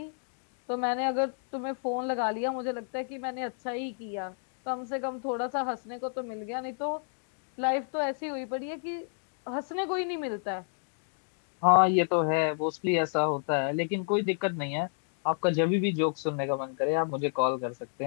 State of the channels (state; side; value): silent; right; digital silence